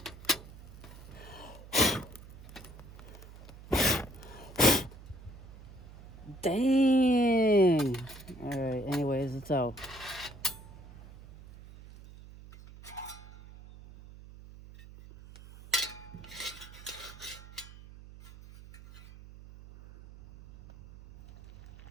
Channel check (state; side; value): noise; right; hum, 17 dB below the sound